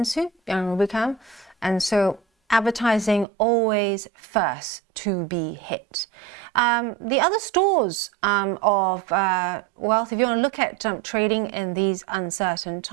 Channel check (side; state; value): left; drops out; at 3.2 s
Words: in Rubicam, and so advertising always first to be hit. The other stores of wealth, if you want to look at trading in these uncertain